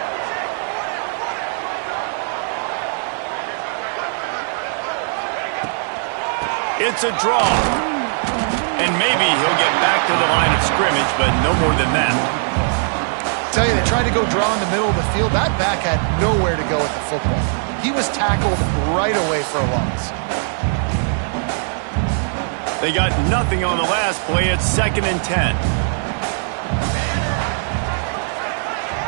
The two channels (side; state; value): left; silent; digital silence